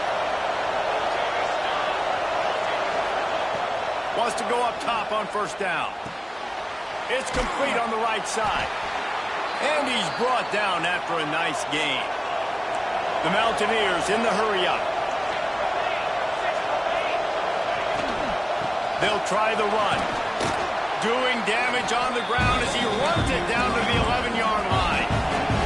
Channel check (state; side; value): identical; both; correlation 1.00